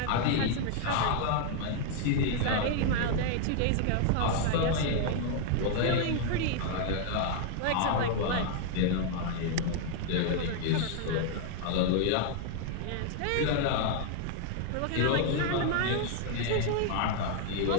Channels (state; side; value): different; both; correlation 0.00